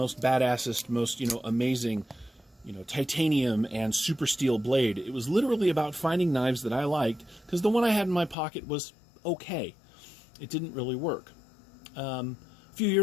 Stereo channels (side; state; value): right; drops out; at 8.3 s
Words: badassest, most, amazing, titanium and super steel blade. It was literally about finding knives that I liked, because the one I had in my pocket was okay. It didn't really work. A few